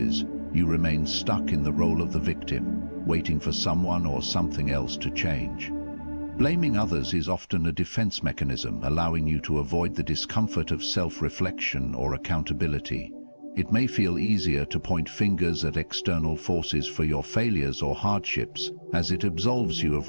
you remain stuck in the role of the victim, waiting for someone or something else to change. Blaming others is often a defense mechanism, allowing you to avoid the discomfort of self-reflection or accountability. It may feel easier to point fingers at external forces for your failures or hardships, as it absolves you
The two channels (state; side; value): inverted; both; correlation -1.00